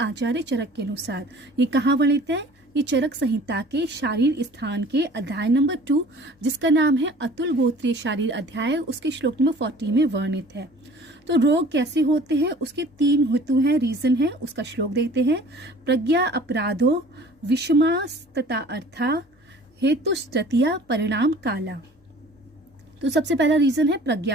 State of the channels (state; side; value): normal; both; correlation 0.48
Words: चरक के अनुसार। ये कहाँ वर्णित है? ये चरक संहिता के शारीर स्थान के अध्याय नंबर 2, जिसका नाम है अतुल गोत्रीय शारीर अध्याय, उसके श्लोक नंबर 40 में वर्णित है। तो रोग कैसे होते हैं, उसके 3 हेतु हैं, रीजन है। उसका श्लोक देखते हैं। प्रज्ञा अपराधो विषमास तथा अर्था हेतु तृतीया परिणाम काला। तो सबसे पहला रीजन है